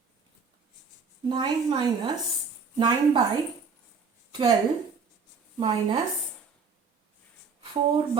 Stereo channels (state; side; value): quieter; left; 5.3 dB